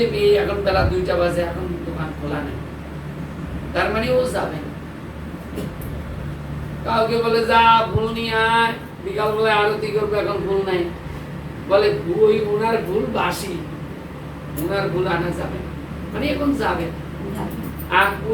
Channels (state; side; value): identical; both; correlation 1.00